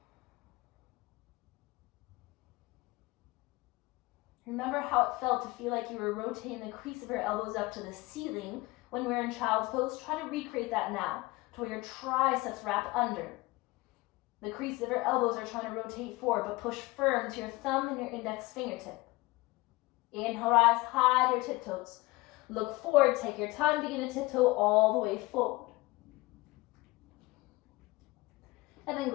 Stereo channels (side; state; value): right; quieter; 21.9 dB